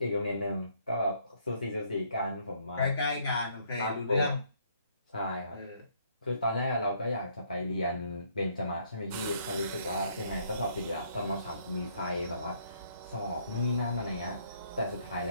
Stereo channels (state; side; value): inverted; both; correlation -0.67